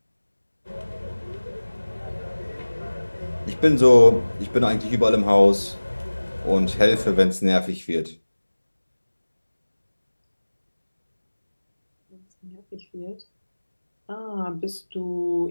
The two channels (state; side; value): inverted; both; correlation -1.00